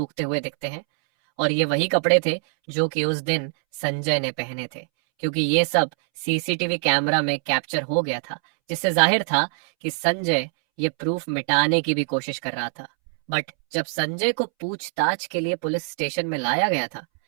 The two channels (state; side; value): silent; left; 63 dB below the other